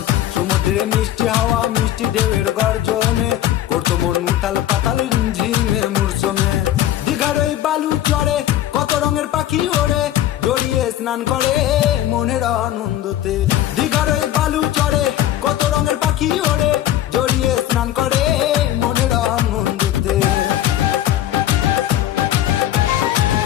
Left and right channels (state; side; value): quieter; right; 12.6 dB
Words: সমুদ্রে মিষ্টি হাওয়া মিষ্টি ঢেউয়ের গর্জনে করতো মন উথাল পাতাল ঝিমে মূর্ছনে। দীঘার ওই বালু চড়ে কত রঙের পাখি ওড়ে, জড়িয়ে স্নান করে মনের আনন্দতে। দীঘার ওই বালু চড়ে কত রঙের পাখি ওড়ে, জড়িয়ে স্নান করে মনের আনন্দতে।